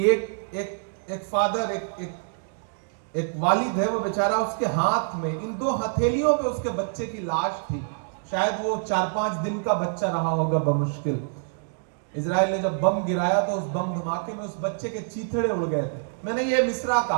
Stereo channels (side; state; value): left; silent; digital silence